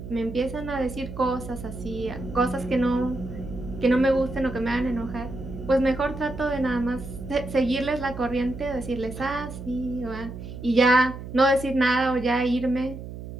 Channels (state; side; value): noise; right; hum, 11 dB below the sound